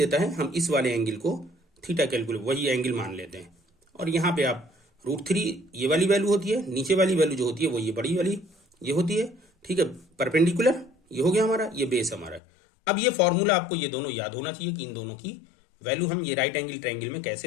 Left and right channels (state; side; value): drops out; right; at 12.4 s